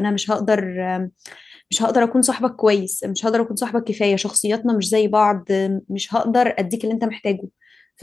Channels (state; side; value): quieter; right; 3.9 dB